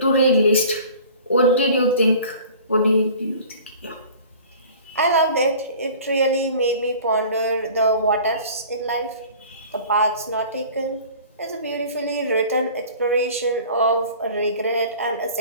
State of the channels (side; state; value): both; inverted; correlation -0.45